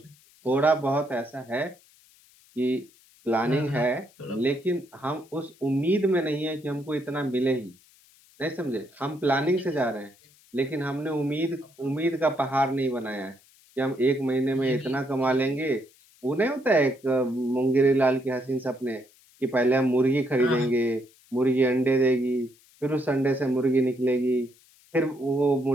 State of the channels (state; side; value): noise; left; hiss, 29 dB below the sound